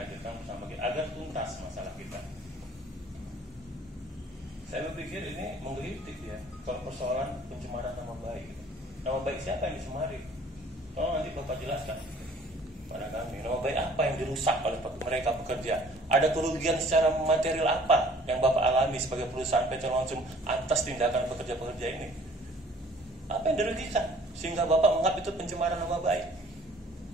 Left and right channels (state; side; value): normal; both; correlation 0.54